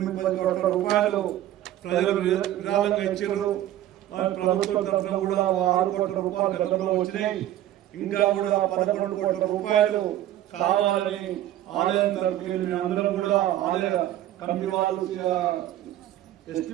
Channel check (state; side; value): quieter; left; 13.1 dB